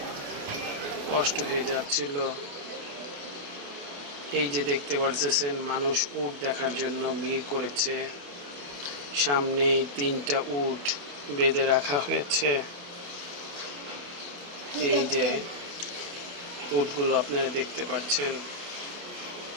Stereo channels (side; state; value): left; late; 28 ms